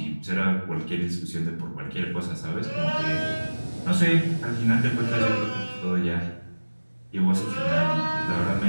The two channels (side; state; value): both; inverted; correlation -1.00